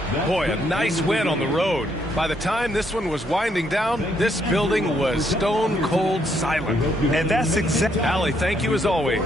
Boy, a nice win on the road. By the time this one was winding down, this building was stone cold silent. And that's exactly... Allie, thank you as always.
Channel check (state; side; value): normal; both; correlation 0.73